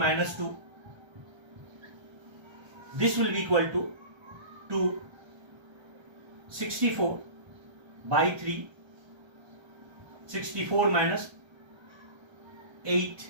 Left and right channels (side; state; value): left; late; 1.3 ms